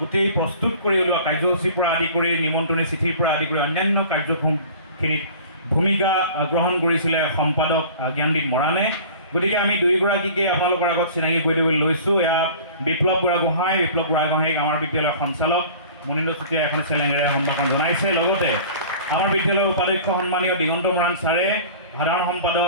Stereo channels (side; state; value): both; inverted; correlation -0.43